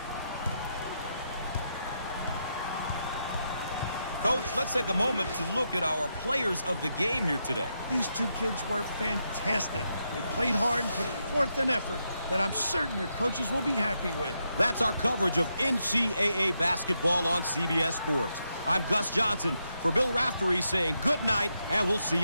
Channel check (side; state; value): both; inverted; correlation -0.83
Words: Coach, let's take a moment to look at our players of the game here today. These two kids were fantastic. They played hard and put forth an effort that I'm certain their coaches will be happy with. That's our coverage of NCAA basketball on CBS Sports. I'm Gus Johnson for Bill Raftery saying good night, and we'll see